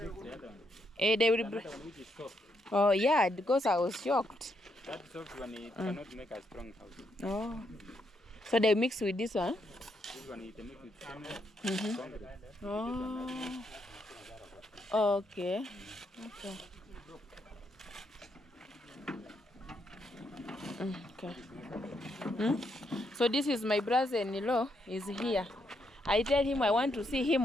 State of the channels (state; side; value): normal; both; correlation 0.78